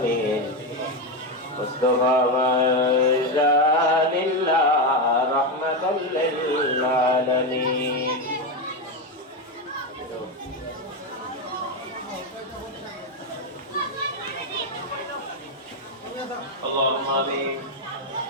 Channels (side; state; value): both; normal; correlation 0.10